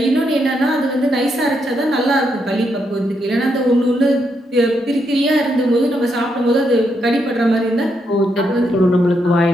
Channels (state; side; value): normal; both; correlation 0.79